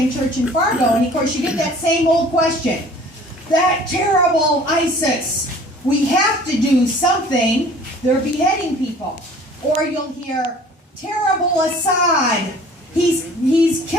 Church in Fargo, and of course you get that same old question. That terrible ISIS, we have to do something. They're beheading people. Or you'll hear, terrible Assad, he's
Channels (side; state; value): both; normal; correlation 0.49